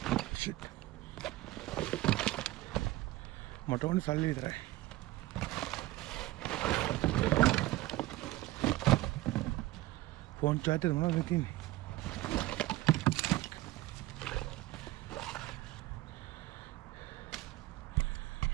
මට ඕනේ සල්ලි විතරයි. ෆෝන් චාර්ජර් මොනවද තියෙන්නේ?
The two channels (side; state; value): left; quieter; 17.3 dB